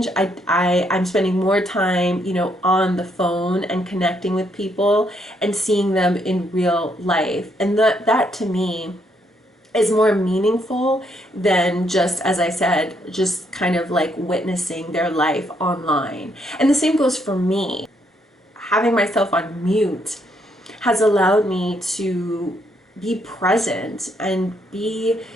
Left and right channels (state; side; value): normal; both; correlation 0.74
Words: I'm spending more time, on the phone and connecting with people and seeing them in real life. And that to me is more meaningful than just, as I said, just kind of like witnessing their life online. And the same goes for me. Having myself on mute has allowed me to be present and be